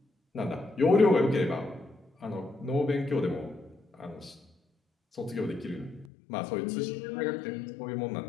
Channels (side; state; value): right; drops out; at 6.1 s